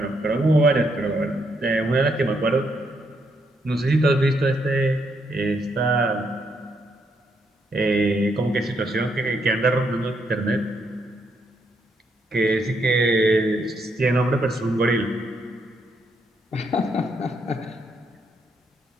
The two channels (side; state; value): both; normal; correlation 0.76